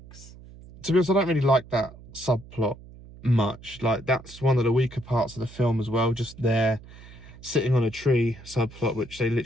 To be honest, I don't really like that subplot much. Like, that's one of the weaker parts of the film as well. Just there sitting on a tree subplot, which they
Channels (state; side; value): noise; right; hum, 19 dB below the sound